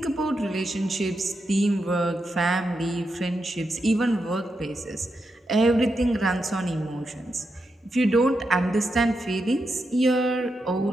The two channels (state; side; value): normal; both; correlation 0.85